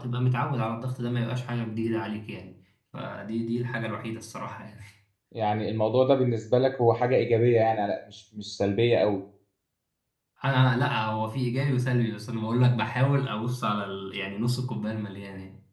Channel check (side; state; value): both; identical; correlation 1.00